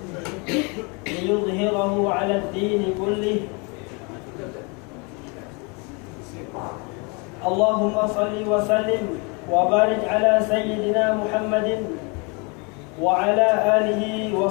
ليظهره على الدين كله اللهم صل وسلم وبارك على سيدنا محمد وعلى آله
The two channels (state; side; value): quieter; right; 31.5 dB